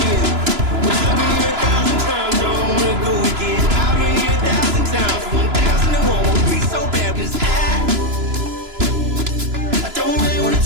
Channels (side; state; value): left; late; 2.9 ms